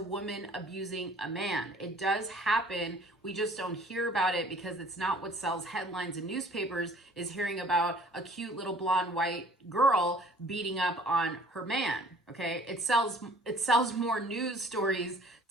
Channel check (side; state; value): both; normal; correlation 0.53